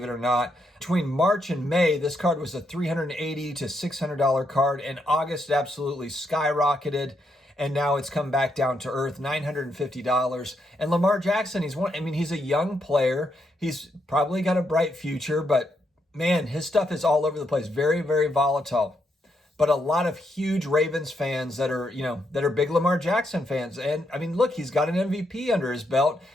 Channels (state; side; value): normal; both; correlation 0.79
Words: it or not. Between March and May, this card was a $380 to $600 card. In August, it absolutely skyrocketed, and now it's come back down to earth, $950. And Lamar Jackson, he's a young player. He's probably got a bright future, but man, his stuff is all over the place. Very, very volatile. But a lot of huge Ravens fans that are big Lamar Jackson fans. And I mean, look, he's got an MVP under his belt.